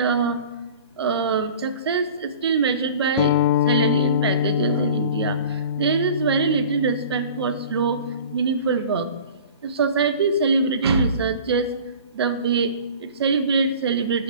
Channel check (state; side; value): inverted; both; correlation -0.42